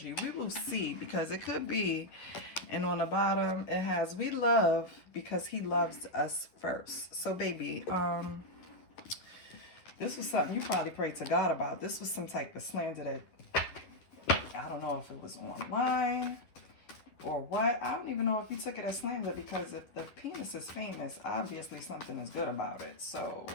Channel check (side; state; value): right; late; 11 ms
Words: We will see because it could be. And on the bottom, it has, we love because he loves us first. So, baby, this was something you probably prayed to God about. This was some type of slander that, I don't know if it was online or what. I don't even know if you took it as slander because if the penis is famous, obviously something is good about it. So,